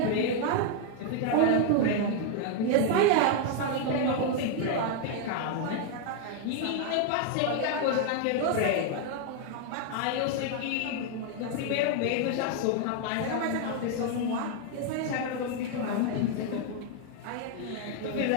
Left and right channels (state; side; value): different; both; correlation 0.00